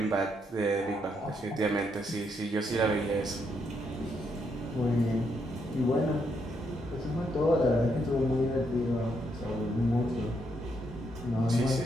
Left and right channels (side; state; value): both; normal; correlation 0.76